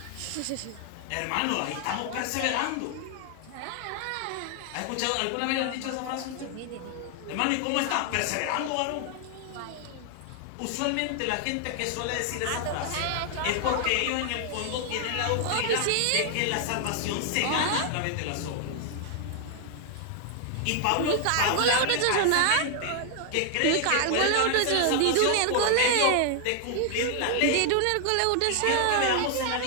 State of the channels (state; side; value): different; both; correlation 0.00